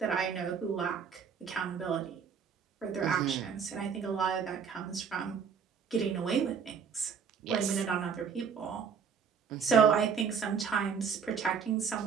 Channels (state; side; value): quieter; left; 6.6 dB